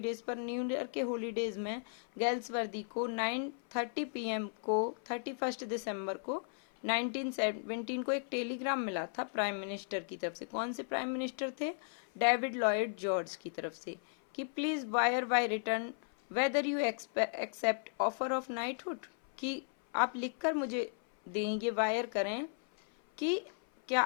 पर, न्यू ईयर के हॉलीडेज में गेल्सवर्दी को 9:30 PM को 31 दिसंबर को 1917 को एक टेलीग्राम मिला था प्राइम मिनिस्टर की तरफ से। कौन से प्राइम मिनिस्टर थे, डेविड लॉयड जॉर्ज की तरफ से, कि please wire by return whether you accept offer of knighthood, कि आप लिखकर मुझे दें, ये वायर करें कि क्या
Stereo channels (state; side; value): silent; right; 54 dB below the other